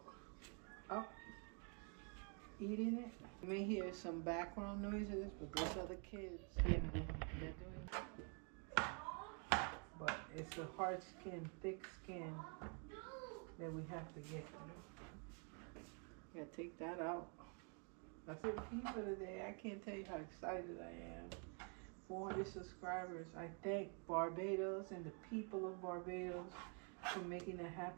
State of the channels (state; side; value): quieter; left; 39.5 dB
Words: up eating it. You may hear some background noises, but those are the kids. Yeah, they're doing it. But it's a hard skin, thick skin that we have to get through. Gotta take that out. That's it for today. I can't tell you how excited I am. 400 subscribers. I thank Barbados and the people of Barbados for making that